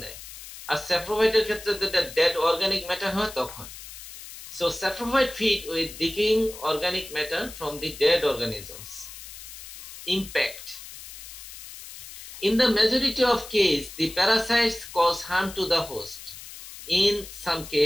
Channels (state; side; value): noise; left; hiss, 14 dB below the sound